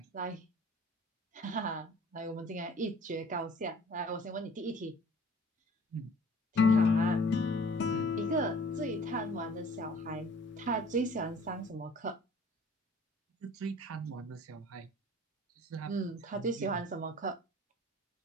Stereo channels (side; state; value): both; normal; correlation 0.50